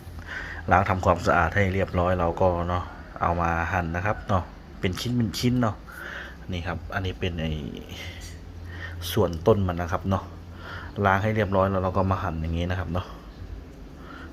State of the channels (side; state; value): both; identical; correlation 1.00